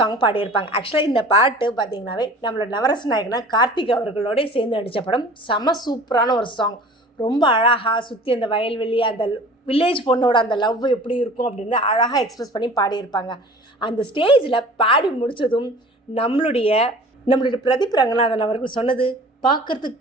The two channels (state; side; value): normal; both; correlation 0.44